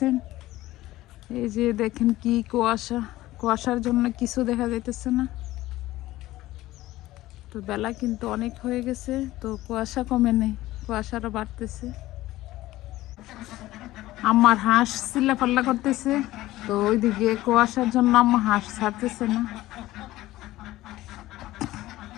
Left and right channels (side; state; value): right; quieter; 16.5 dB